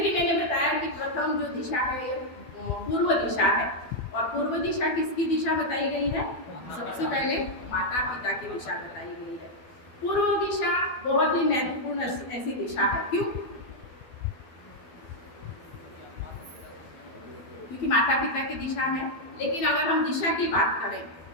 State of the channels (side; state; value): right; late; 12 ms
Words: मैंने बताया कि प्रथम जो दिशा है ये पूर्व दिशा है। और पूर्व दिशा किसकी दिशा बताई गई है? सबसे पहले माता पिता की दिशा बताई गई है। पूर्व दिशा बहुत ही महत्वपूर्ण ऐसी दिशा है। क्यों? क्योंकि माता पिता की दिशा है। लेकिन अगर हम दिशा की बात करें